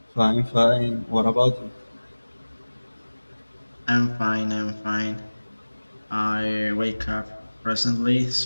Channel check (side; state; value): both; inverted; correlation -1.00